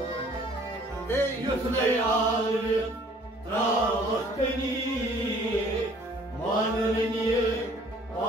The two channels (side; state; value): both; normal; correlation 0.56